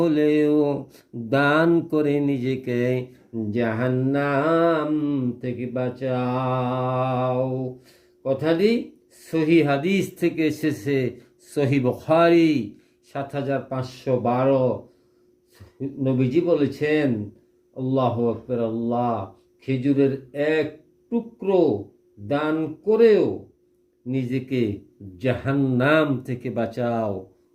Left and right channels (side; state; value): both; identical; correlation 1.00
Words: দান করে নিজেকে জাহান্নাম থেকে বাঁচাও। কথাটি সহি হাদিস থেকে এসেছে, সহি বুখারী ৭৫১২। নবীজি বলেছেন, আল্লাহু আকবার, আল্লাহ, খেজুরের এক টুকরো দান করেও নিজেকে জাহান্নাম থেকে বাঁচাও।